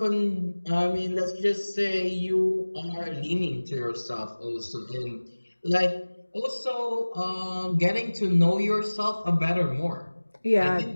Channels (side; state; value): both; inverted; correlation -1.00